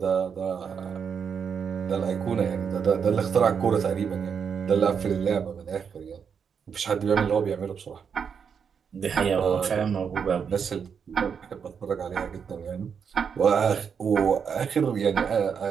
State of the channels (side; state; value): left; quieter; 6.8 dB